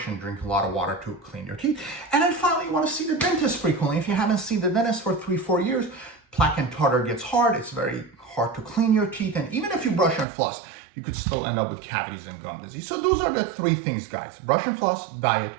and drink a lot of water to clean your teeth. And then finally, you want to see the dentist frequently. If you haven't seen the dentist for 3-4 years, plaque and tartar gets hard. It's very hard to clean your teeth. And even if you brush and floss, you could still end up with cavities and gum disease. So those are the 3 things, guys. Brush and floss, diet,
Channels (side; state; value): left; drops out; at 10.2 s